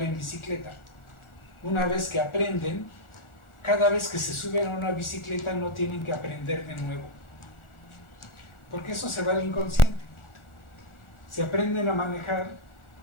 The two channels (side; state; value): right; late; 1.4 ms